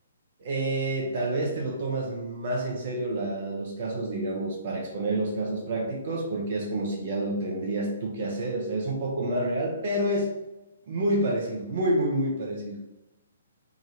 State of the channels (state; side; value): inverted; both; correlation -0.50